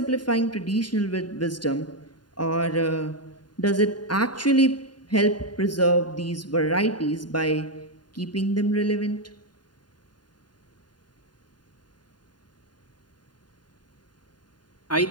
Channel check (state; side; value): late; right; 0.70 ms